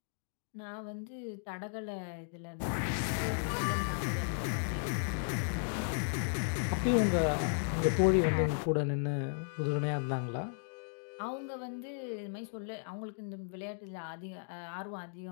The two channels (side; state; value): right; silent; digital silence